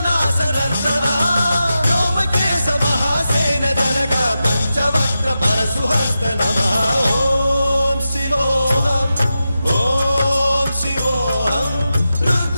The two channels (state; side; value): inverted; both; correlation -0.90